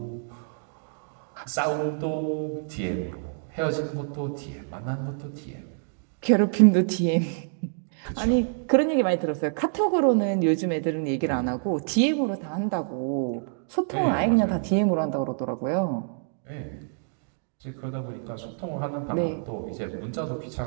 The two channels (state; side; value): silent; left; digital silence